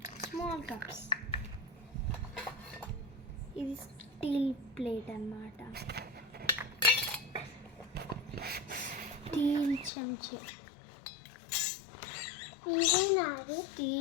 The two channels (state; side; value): drops out; right; at 9.9 s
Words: small cups. ఇది స్టీల్ ప్లేట్ అన్నమాట. స్టీల్ చెంచా.